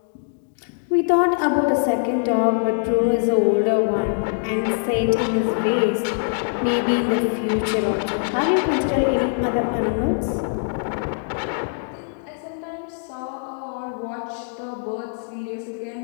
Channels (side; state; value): right; silent; digital silence